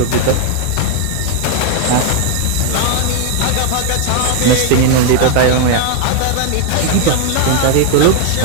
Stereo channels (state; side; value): different; both; correlation 0.00